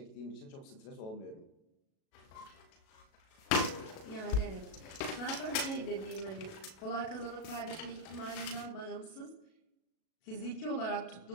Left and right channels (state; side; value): late; right; 37 ms